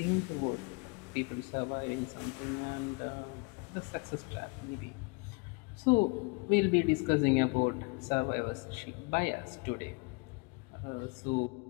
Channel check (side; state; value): right; quieter; 31.3 dB